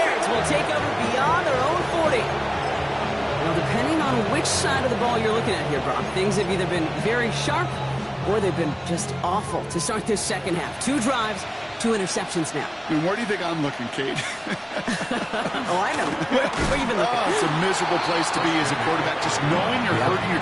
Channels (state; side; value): identical; both; correlation 1.00